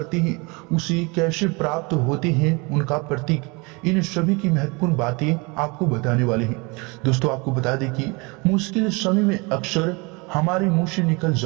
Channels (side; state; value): left; quieter; 28.2 dB